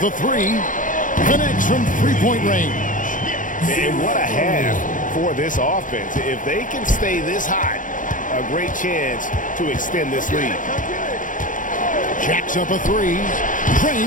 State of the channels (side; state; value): right; late; 0.38 ms